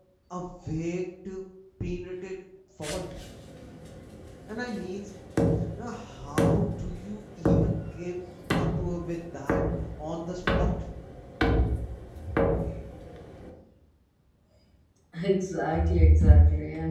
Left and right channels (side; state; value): both; identical; correlation 1.00